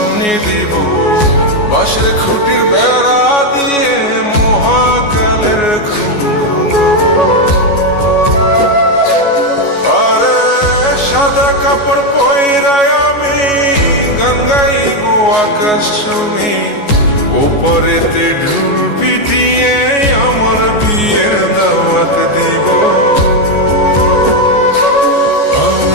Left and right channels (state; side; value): late; right; 14 ms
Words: দিব, বাঁশের খুঁটির বেড়া দিয়ে মহাকালের ঘুম ঘুমাবো। আরে সাদা কাপড় পয়রায় আমি গান গাইব আকাশ চুমি, ওপরেতে ঢুল পিটিয়ে আমার বিয়ের দাওয়াত দিব।